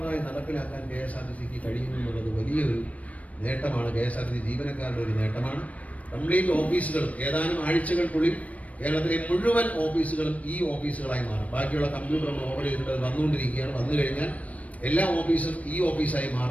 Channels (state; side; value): late; right; 0.068 ms